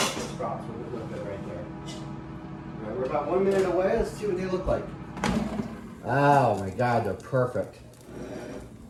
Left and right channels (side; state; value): both; identical; correlation 1.00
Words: sprouts will look good right there. All right, we're about 1 minute away. Let's see what they look like. Oh my God, they're perfect.